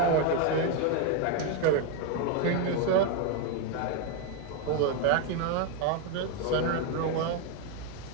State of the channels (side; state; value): both; different; correlation 0.01